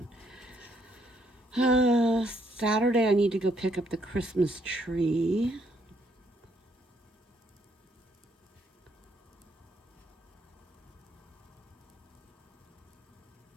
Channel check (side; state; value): both; normal; correlation 0.72